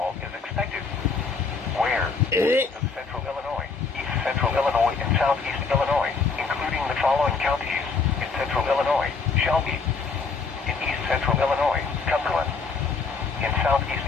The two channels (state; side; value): quieter; right; 4.7 dB